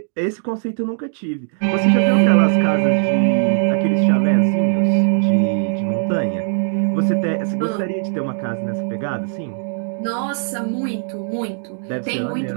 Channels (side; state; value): left; silent; digital silence